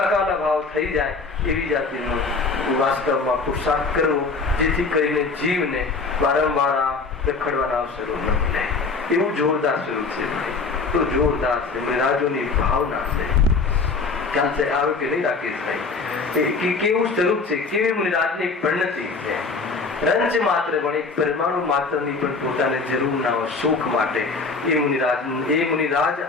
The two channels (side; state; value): right; quieter; 4.3 dB